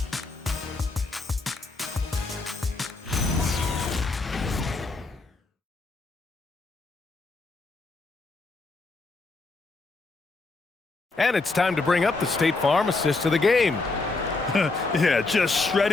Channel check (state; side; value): quieter; right; 3.6 dB